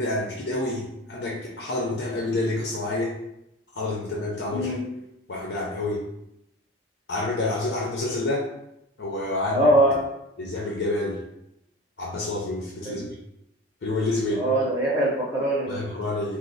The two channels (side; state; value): both; normal; correlation 0.34